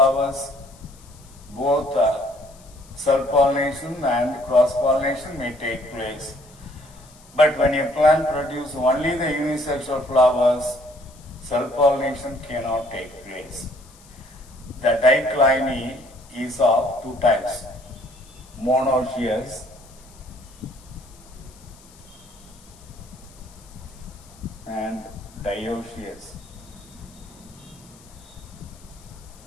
both self-pollination and cross-pollination may take place. But when a plant produces only the unisexual flowers, self-pollination cannot take place. The dicliny is of 2 types, monoecious and dioecious.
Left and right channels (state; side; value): noise; left; hiss, 25 dB below the sound